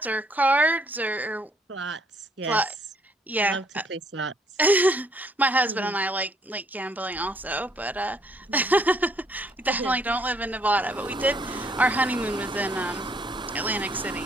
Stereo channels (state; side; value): normal; both; correlation 0.67